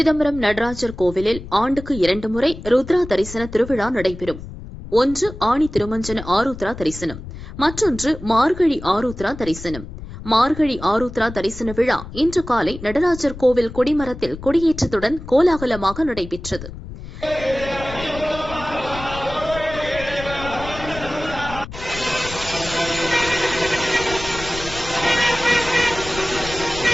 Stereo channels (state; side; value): noise; left; rumble, 12 dB below the sound